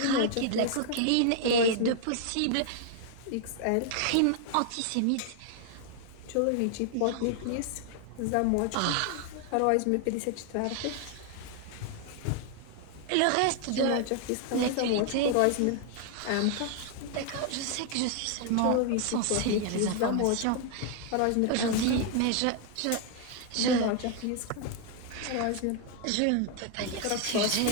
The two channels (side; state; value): both; different; correlation 0.00